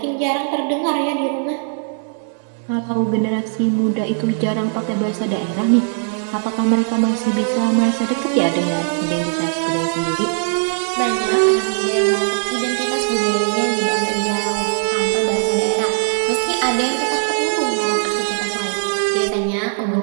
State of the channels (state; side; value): silent; left; 66 dB below the other